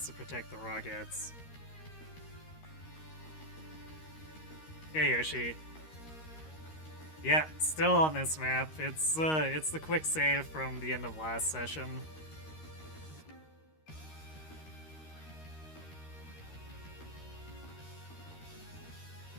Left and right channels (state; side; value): late; right; 13 ms